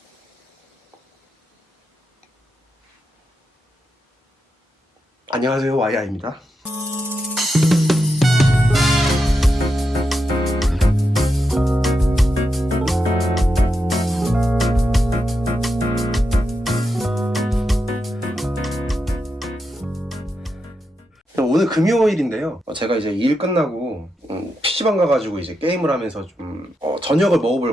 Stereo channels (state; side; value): normal; both; correlation 0.86